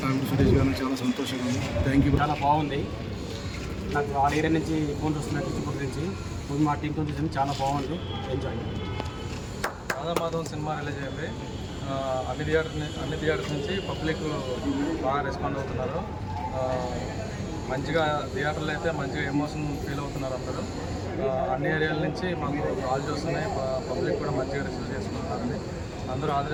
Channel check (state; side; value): identical; both; correlation 1.00